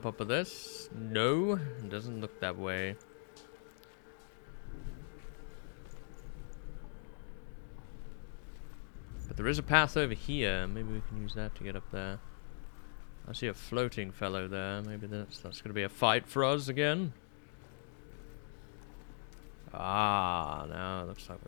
up with this? No, it doesn't look that way. But there is a path over here. Maybe we can use that to get up there. I see a floating fellow there. Maybe that's going to be a fight for us again. Ah, now it looks like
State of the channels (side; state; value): right; silent; digital silence